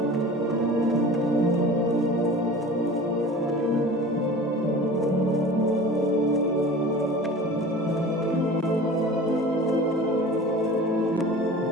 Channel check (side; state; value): both; normal; correlation 0.39